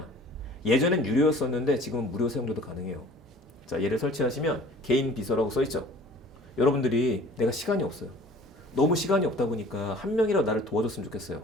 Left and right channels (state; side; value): normal; both; correlation 0.48